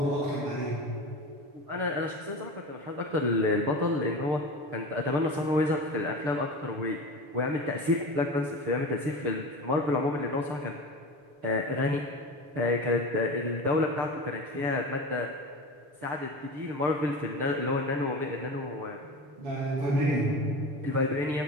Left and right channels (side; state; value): left; late; 6.9 ms